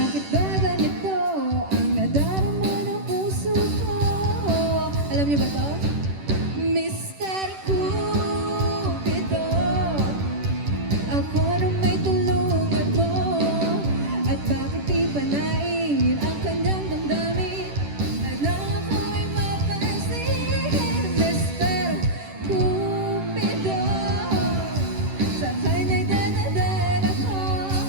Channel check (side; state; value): left; late; 10 ms